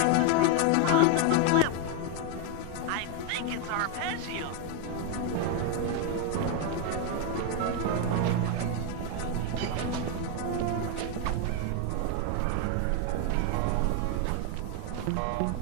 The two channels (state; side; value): different; both; correlation 0.01